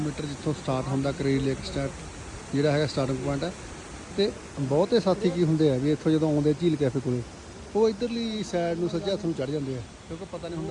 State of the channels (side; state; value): both; identical; correlation 1.00